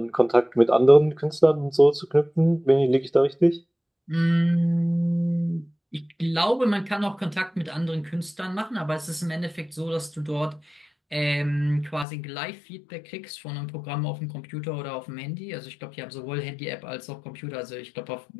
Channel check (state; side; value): drops out; right; at 12.1 s